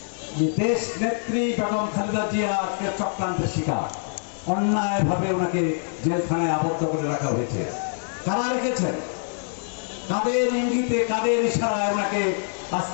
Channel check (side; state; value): right; silent; digital silence